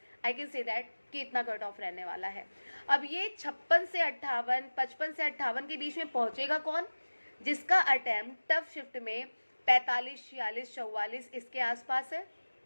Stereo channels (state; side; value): inverted; both; correlation -1.00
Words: I can say that कि इतना कट ऑफ रहने वाला है। अब ये 56 से 58, 55 से 58 के बीच में पहुंचेगा कौन? जिसका अटेम्प्ट टफ शिफ्ट में 45, 46, 44 इसके आसपास है,